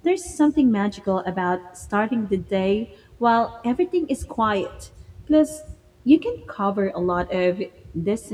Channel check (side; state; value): both; identical; correlation 1.00